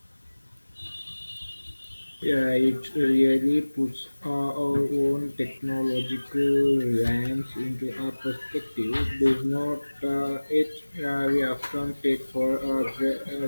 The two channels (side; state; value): both; inverted; correlation -1.00